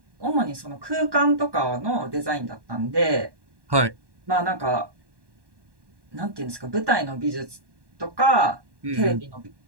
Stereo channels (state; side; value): late; left; 1.1 ms